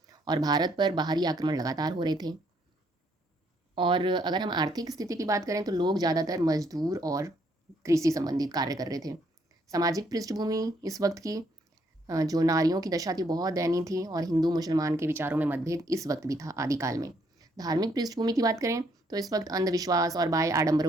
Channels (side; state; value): both; normal; correlation 0.70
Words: और भारत पर बाहरी आक्रमण लगातार हो रहे थे। और अगर हम आर्थिक स्थिति की बात करें तो लोग ज़्यादातर मजदूर और कृषि संबंधित कार्य कर रहे थे। सामाजिक पृष्ठभूमि इस वक्त की जो नारियों की दशा थी बहुत दयनीय थी और हिंदू मुसलमान के विचारों में मतभेद इस वक्त भी था आदिकाल में। धार्मिक पृष्ठभूमि की बात करें तो इस वक्त अंधविश्वास और बाह्य